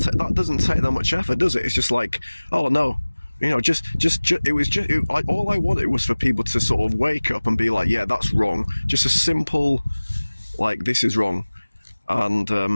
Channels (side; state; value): both; inverted; correlation -1.00